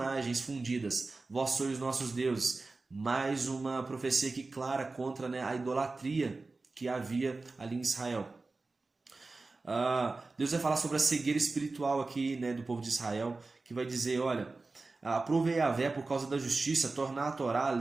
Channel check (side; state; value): left; quieter; 3.6 dB